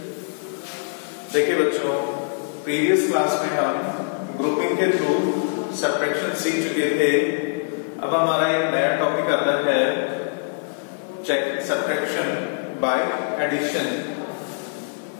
देखिए बच्चों, previous class में हम ग्रुपिंग के थ्रू सब्ट्रैक्शन सीख चुके थे। अब हमारा एक नया टॉपिक आता है check subtraction by addition.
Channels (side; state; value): right; silent; digital silence